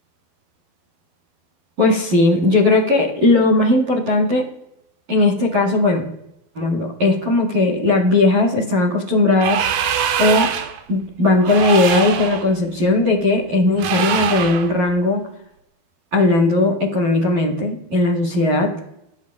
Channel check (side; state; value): left; late; 12 ms